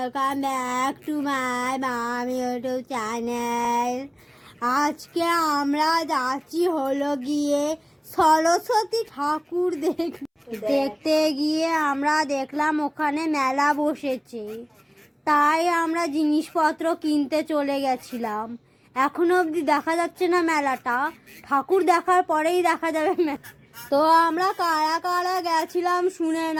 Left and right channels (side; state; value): both; identical; correlation 1.00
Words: back to my মামি YouTube channel. আজকে আমরা যাচ্ছি হলো গিয়ে সরস্বতী ঠাকুর দেখতে গিয়ে আমরা দেখলাম ওখানে মেলা বসেছে, তাই আমরা জিনিসপত্র কিনতে চলে গেছিলাম। এখনো অবধি দেখা যাচ্ছে না মেলাটা, ঠাকুর দেখার পরেই দেখা যাবে মেলা। তো আমরা কারা কারা গেছিলাম শুনে